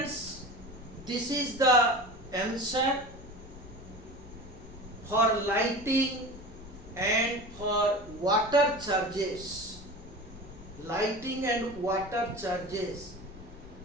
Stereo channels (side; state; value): left; noise; rumble, 16 dB below the sound